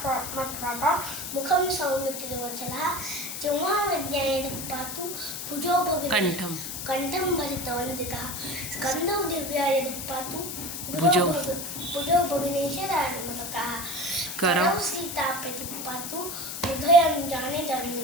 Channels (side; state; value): left; noise; hiss, 6 dB below the sound